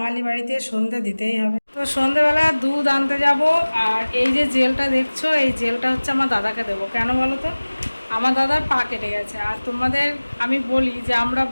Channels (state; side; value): inverted; both; correlation -1.00